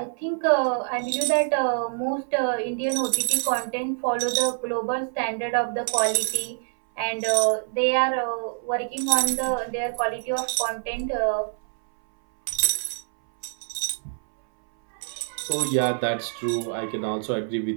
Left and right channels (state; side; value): silent; left; 61 dB below the other